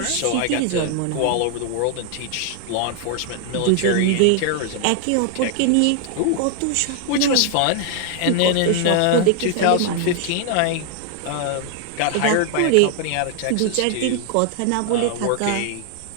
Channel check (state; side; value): different; both; correlation 0.00